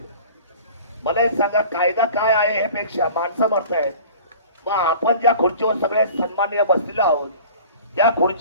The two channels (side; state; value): both; inverted; correlation -0.43